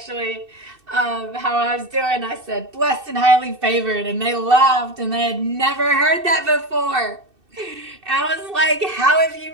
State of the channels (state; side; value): late; left; 2.6 ms